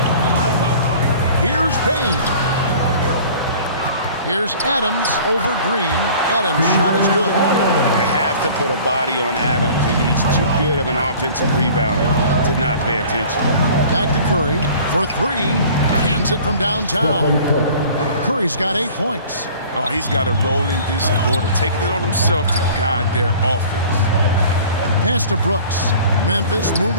Here's Bane. Here's Adams over Green. Adams' shot is good. To have have to put a body on Adams. He's too good of an offensive rebounder to not pay attention. Back to Curry for three. Hands it from downtown. Curry's got 8 points. Oh, he's got to roll in this quarter, taking it on himself to guide their offense. Pass to Brooks. Memphis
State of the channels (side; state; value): both; inverted; correlation -0.47